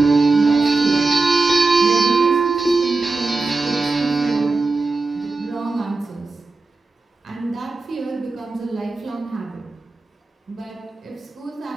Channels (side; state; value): left; quieter; 3.6 dB